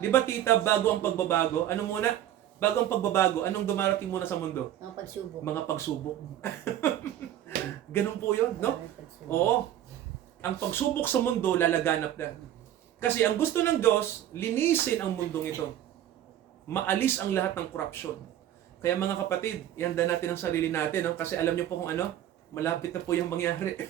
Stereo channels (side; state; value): left; quieter; 11.8 dB